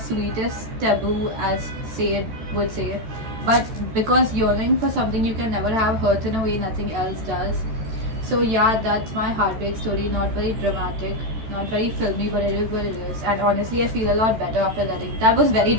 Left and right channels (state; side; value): late; left; 14 ms